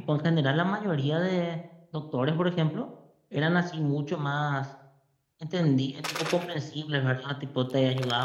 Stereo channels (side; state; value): both; identical; correlation 1.00